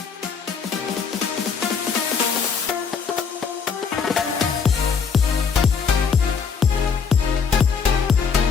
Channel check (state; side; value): quieter; right; 5.9 dB